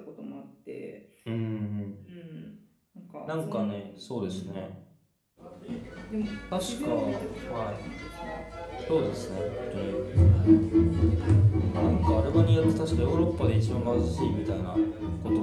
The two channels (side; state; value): both; identical; correlation 1.00